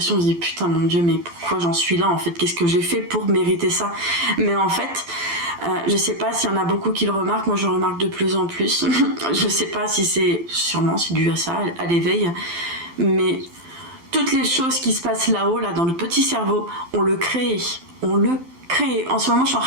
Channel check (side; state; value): left; late; 12 ms